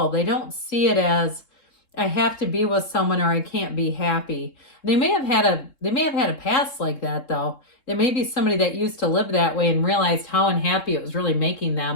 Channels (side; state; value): right; late; 3.7 ms